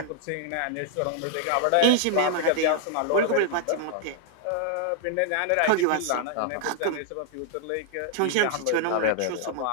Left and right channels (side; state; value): both; different; correlation 0.00